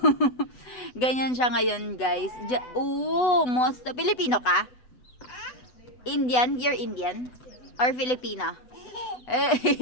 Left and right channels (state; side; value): late; right; 8.0 ms